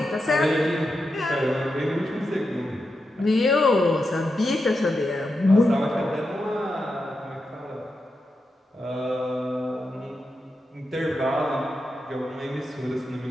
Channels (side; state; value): both; normal; correlation 0.88